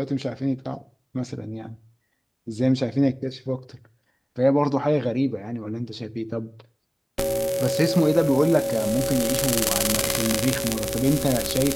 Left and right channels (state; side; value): identical; both; correlation 1.00